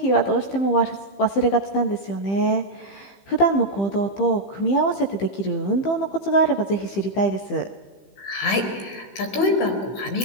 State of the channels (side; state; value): right; late; 16 ms